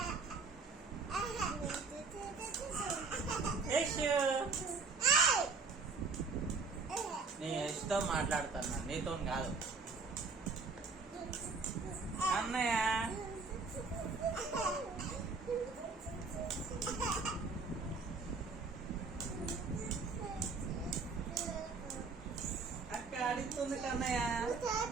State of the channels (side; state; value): left; quieter; 4.4 dB